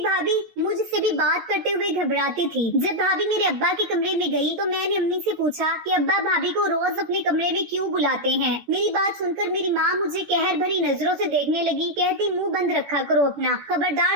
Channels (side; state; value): left; late; 14 ms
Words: भाभी मुझसे भी बात करते हुए घबराती थी। जब भाभी मेरे अब्बा के कमरे में गई तो मैंने अम्मी से पूछा कि अब्बा भाभी को रोज अपने कमरे में क्यों बुलाते हैं। मेरी बात सुनकर मेरी माँ मुझे कहर भरी नजरों से देखने लगी। कहती, मुंह बंद रखा करो अपना,